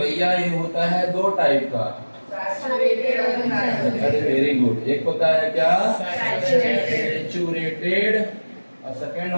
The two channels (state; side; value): inverted; both; correlation -1.00